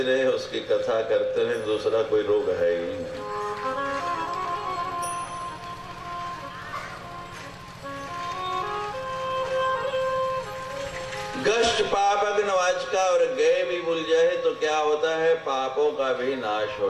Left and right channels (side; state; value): both; identical; correlation 1.00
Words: रहे, उसकी कथा करते रहे, दूसरा कोई रोग है ही नहीं। गष्ट पापग्न वाचका, और गए भी भूल जाए तो क्या होता है? पापों का भी नाश